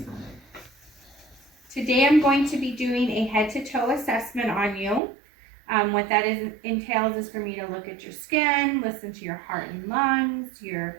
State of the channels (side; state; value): left; drops out; at 5.0 s